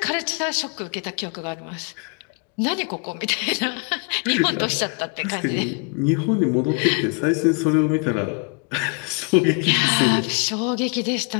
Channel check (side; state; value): right; quieter; 35.5 dB